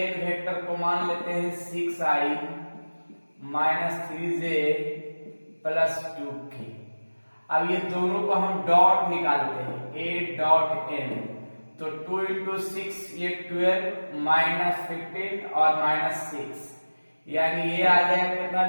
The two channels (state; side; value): inverted; both; correlation -1.00